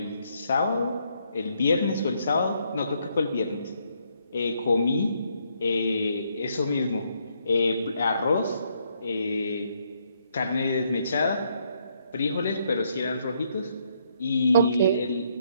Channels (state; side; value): inverted; both; correlation -0.73